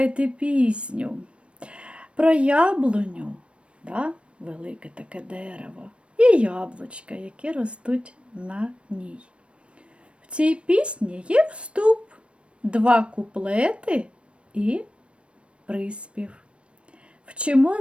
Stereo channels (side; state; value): left; late; 0.059 ms